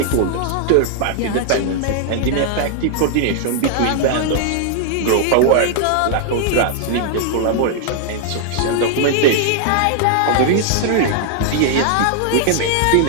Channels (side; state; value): both; different; correlation 0.00